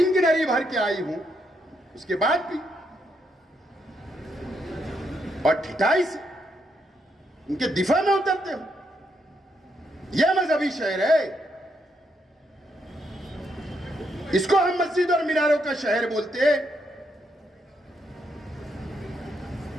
की नरी भर के आई हूं। उसके बाद भी और ठिठाई से उनके दिफा में उतरते हो। यह मजहबी शहर है। इसको हम मस्जिद और मीनारों का शहर बोलते हैं।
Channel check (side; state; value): both; normal; correlation 0.78